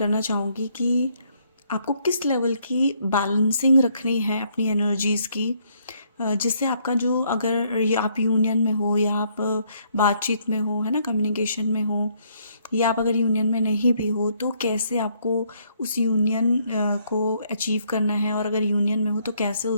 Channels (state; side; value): inverted; both; correlation -0.69